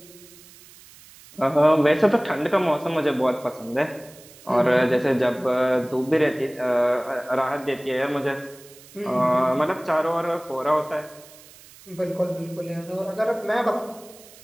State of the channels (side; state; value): right; noise; hiss, 22 dB below the sound